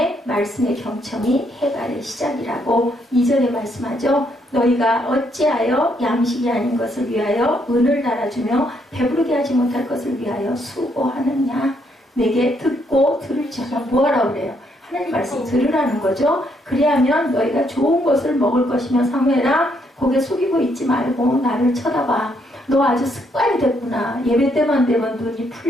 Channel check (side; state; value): both; normal; correlation 0.73